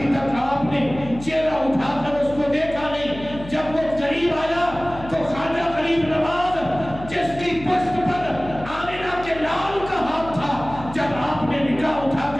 تک آپ نے چہرہ اٹھا کر اس کو دیکھا نہیں۔ جب وہ قریب آیا تو خواجہ غریب نواز جس کی پشت پر آمنہ کے لال کا ہاتھ تھا، جب آپ نے نگاہ اٹھا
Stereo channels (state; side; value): noise; left; hum, 14 dB below the sound